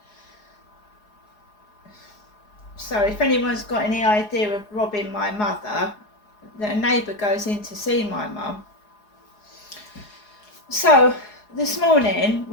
So if anyone's got any idea of robbing my mother, a neighbour goes in to see my mum. So this morning,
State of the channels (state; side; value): late; right; 4.8 ms